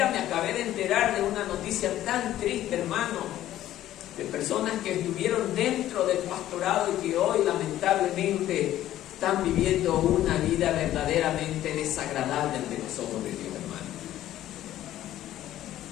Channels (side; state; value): right; quieter; 13.2 dB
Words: me acabé de enterar de una noticia tan triste, hermano, de personas que estuvieron dentro del pastorado y que hoy lamentablemente están viviendo una vida verdaderamente desagradable ante los ojos de Dios, hermano.